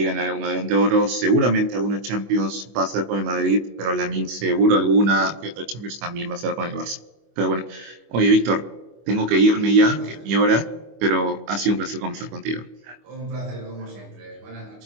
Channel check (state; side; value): late; left; 25 ms